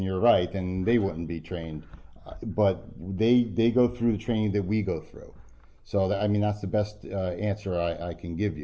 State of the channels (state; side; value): identical; both; correlation 1.00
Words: you're right, then they wouldn't be trained. But they go through the training that we go through. So that's the best answer I can give